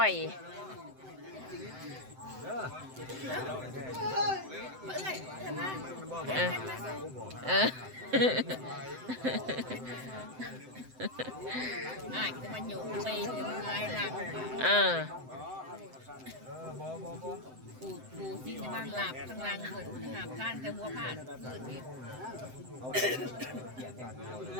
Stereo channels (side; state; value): left; late; 7.8 ms